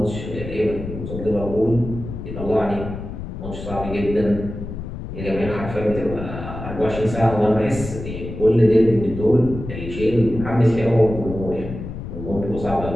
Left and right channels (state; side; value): noise; left; rumble, 9 dB below the sound